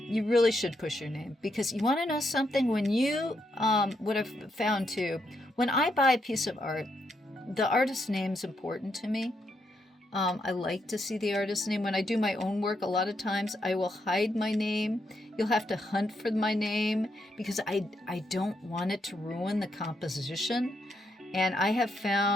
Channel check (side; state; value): both; normal; correlation 0.79